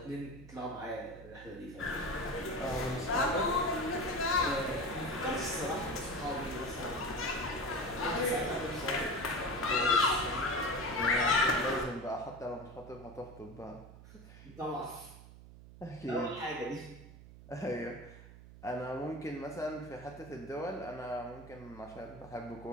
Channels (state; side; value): noise; right; hum, 17 dB below the sound